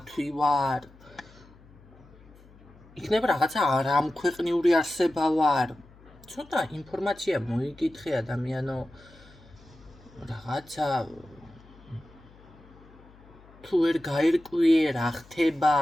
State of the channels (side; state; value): left; noise; hum, 24 dB below the sound